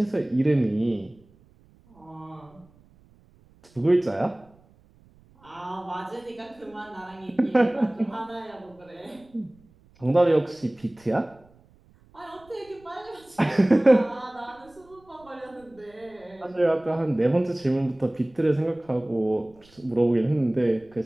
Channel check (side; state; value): right; noise; rumble, 29 dB below the sound